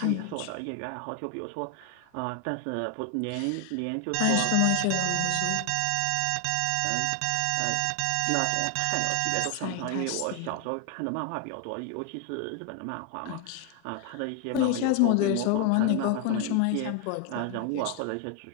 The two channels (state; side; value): different; both; correlation 0.01